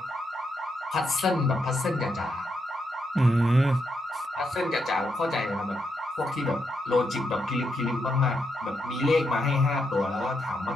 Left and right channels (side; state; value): both; normal; correlation 0.81